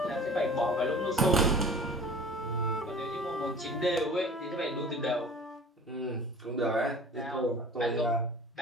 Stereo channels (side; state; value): both; normal; correlation 0.43